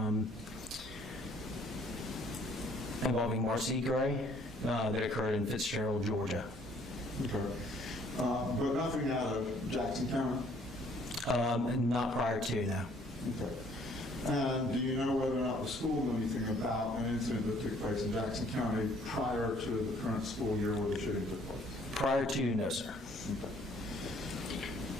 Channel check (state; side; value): normal; both; correlation 0.61